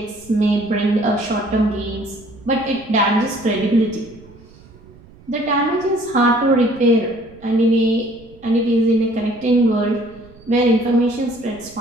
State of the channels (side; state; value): right; noise; rumble, 24 dB below the sound